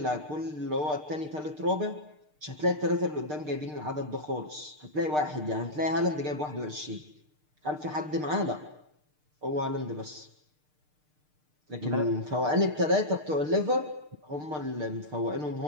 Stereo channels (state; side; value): late; left; 6.6 ms